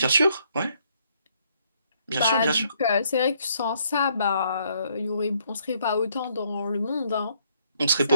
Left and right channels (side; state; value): both; inverted; correlation -0.70